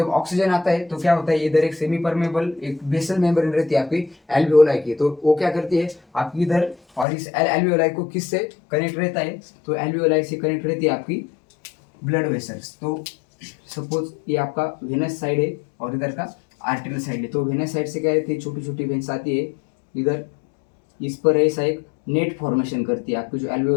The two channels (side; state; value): right; drops out; at 7.1 s